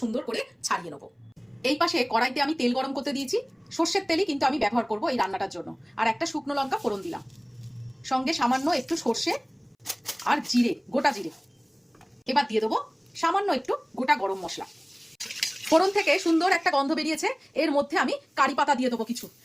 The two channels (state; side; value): identical; both; correlation 1.00